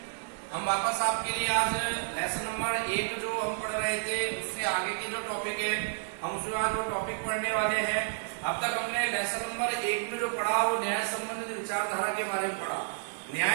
हम वापस आपके लिए आज लेसन नंबर 1 जो हम पढ़ रहे थे उससे आगे की जो टॉपिक है हम उसमें आज वो टॉपिक पढ़ने वाले हैं। अब तक हमने लेसन नंबर 1 में जो पढ़ा वो न्याय संबंधित विचारधारा के बारे में पढ़ा।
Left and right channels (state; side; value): silent; left; 57 dB below the other